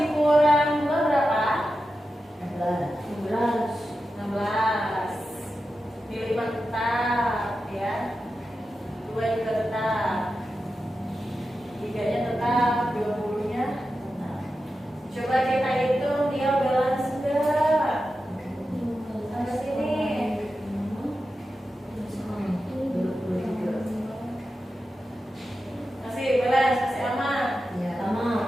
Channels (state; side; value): normal; both; correlation 0.91